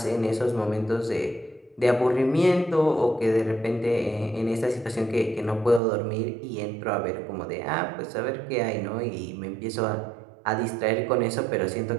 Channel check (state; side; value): drops out; left; at 5.8 s